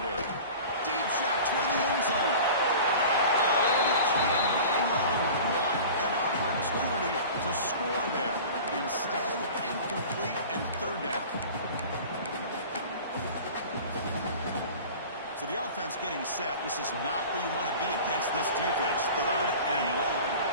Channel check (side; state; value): both; inverted; correlation -0.39